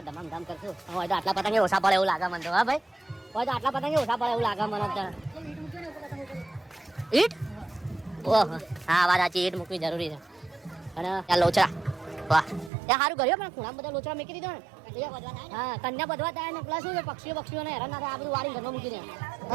ધમામ ધમ કરશું હોય તો આટલા પતંગ ઓછા પડે એવું લાગે મને તો હા ભાઈ હોય તો આટલા પતંગ ઓછા પડે એવું લાગે મને તો ઈટ ઓહો હા વાત સાચી ઈટ મૂકવી જરૂરી છે અને ત્યાં લોચા વાહ ત્યાં સારું કર્યું પણ ખૂણામાં બધા લોચા મૂકી દીધો ને હા કન્યા બધવા થાય ને પ્લસ શું છે પક્ષીઓને હેરાન ના થાય આ બધું વાળી ઘરમાં મૂકી દે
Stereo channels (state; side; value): drops out; left; at 12.7 s